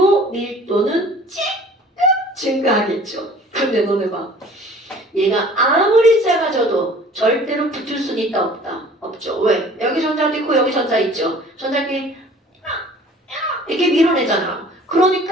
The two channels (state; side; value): normal; both; correlation 0.49